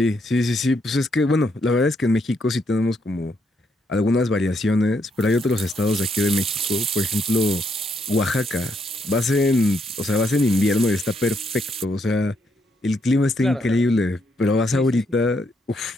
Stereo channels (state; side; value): normal; both; correlation 0.76